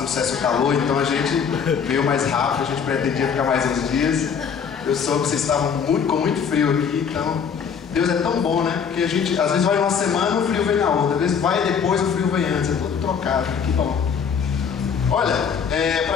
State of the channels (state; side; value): quieter; right; 6.8 dB